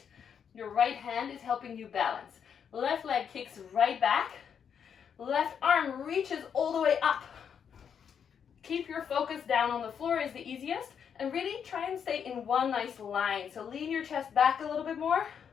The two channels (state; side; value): quieter; right; 7.6 dB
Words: Your right hand is helping you balance. Left leg kicks right back. Left arm reaches all the way up. Keep your focus down on the floor is the easiest. And really try and stay in one nice line. So lean your chest back a little bit more.